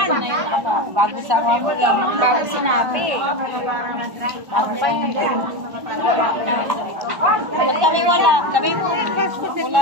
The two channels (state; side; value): late; left; 1.1 ms